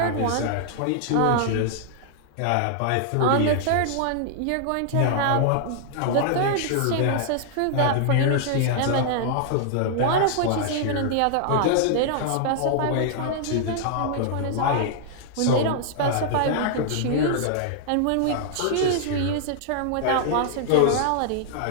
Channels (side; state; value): both; different; correlation -0.01